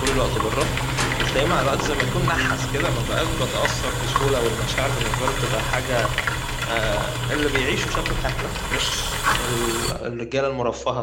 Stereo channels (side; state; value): both; identical; correlation 1.00